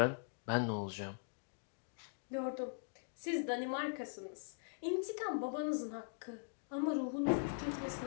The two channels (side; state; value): right; silent; digital silence